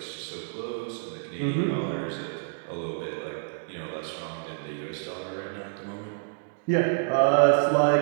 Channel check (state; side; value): silent; left; digital silence